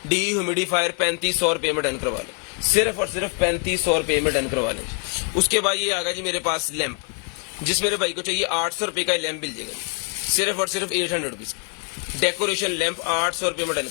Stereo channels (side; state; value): right; quieter; 36.2 dB